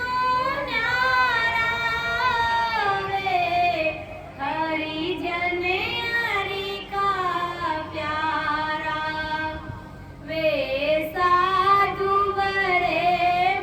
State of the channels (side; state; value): both; identical; correlation 1.00